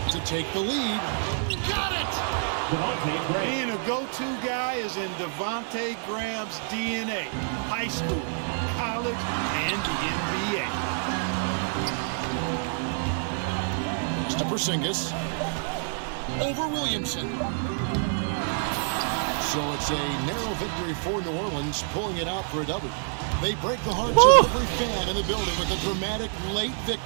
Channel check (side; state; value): left; silent; 60 dB below the other